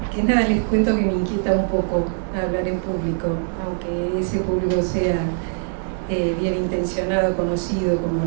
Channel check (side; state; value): left; silent; 64 dB below the other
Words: que nada les cuento que me inquieta un poco hablar en público, aunque ese público sea bien intencionado, conocido como